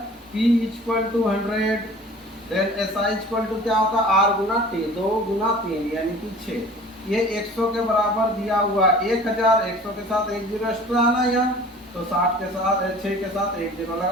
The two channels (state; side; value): normal; both; correlation 0.45